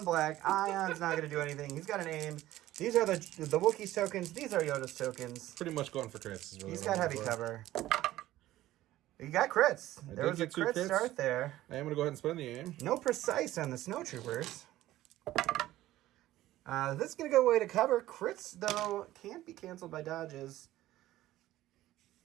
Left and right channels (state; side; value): quieter; left; 15.1 dB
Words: black. Ion's not going to do anything. He's got an aim. These are the Wookiees tokens. These are Yoda's tokens. Pretty much going for crits. Is really He's what got I'm heavy going for. cover. You got crits. I There did was a get 2 crit crits. start there. I am going to go ahead and spend the aim. No precise on the snowtroopers. This is going to go away to cover. Crits, though, can't be canceled by dodges.